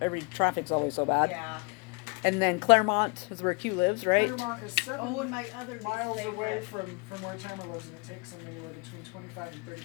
every traffic's always so bad. Yeah. And then Claremont is where Q lives, right? Claremont is 7 Oh, and my other miles favorite. away from where Tamara lives, and it takes them anywhere between 25 and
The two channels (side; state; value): right; quieter; 30.8 dB